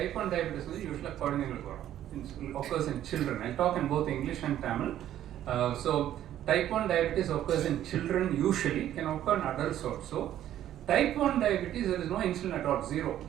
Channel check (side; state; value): left; quieter; 11.8 dB